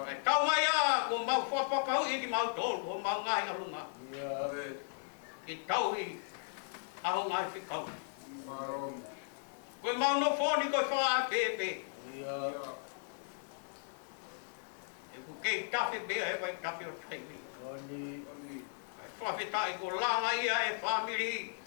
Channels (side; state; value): right; silent; digital silence